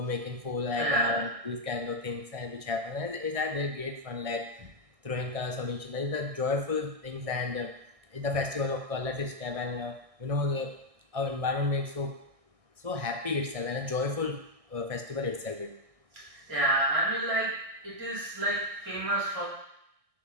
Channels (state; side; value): late; left; 1.6 ms